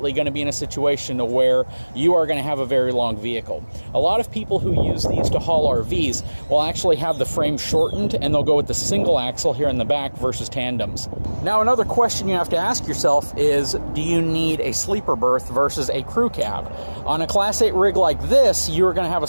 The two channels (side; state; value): both; inverted; correlation -1.00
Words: going to be in a situation to where you are going to have a very long vehicle. A lot of people who use these to haul RVs will actually have the frame shortened and they'll go with the single axle here in the back versus tandems. Now, another question you have to ask yourself is, do you need a sleeper berth versus a crew cab? On a Class 8 rig like this, you're going to have a